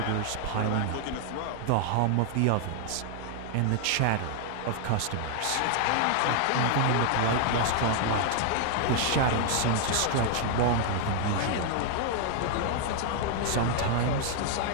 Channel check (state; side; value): different; both; correlation 0.00